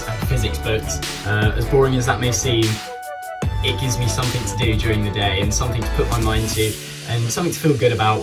and physics books. As boring as that may seem, it gives me something to do during the day and something to put my mind to and something to feel good about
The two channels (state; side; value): identical; both; correlation 1.00